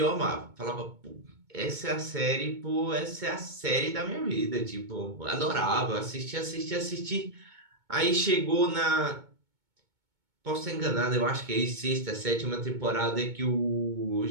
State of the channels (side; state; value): left; late; 2.2 ms